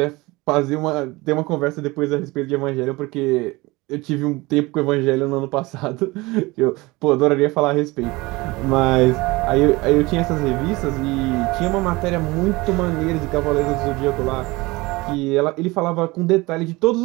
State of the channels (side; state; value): left; quieter; 22.3 dB